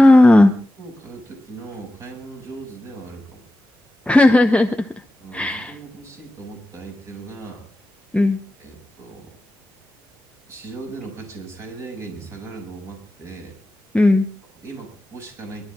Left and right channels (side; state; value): both; normal; correlation 0.94